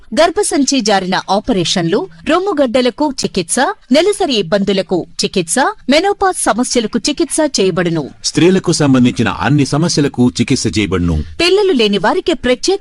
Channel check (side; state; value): both; identical; correlation 1.00